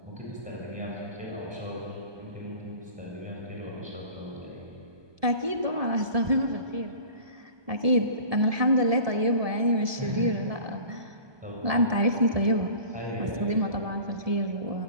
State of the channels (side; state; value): left; late; 1.7 ms